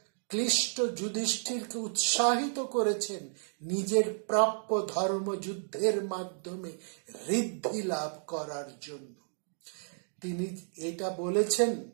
ক্লিষ্ট যুধিষ্ঠিরকে উৎসাহিত করেছেন নিজের প্রাপ্য ধর্ম যুদ্ধের মাধ্যমে ঋদ্ধি লাভ করার জন্য। তিনি এটা বলেছেন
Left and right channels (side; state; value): left; silent; digital silence